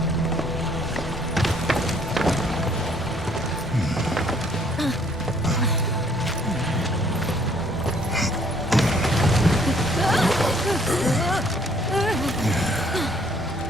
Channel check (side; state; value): both; normal; correlation 0.62